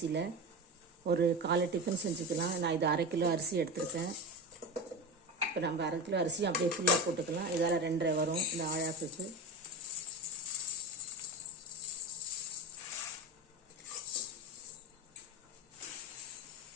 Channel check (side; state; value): both; normal; correlation 0.24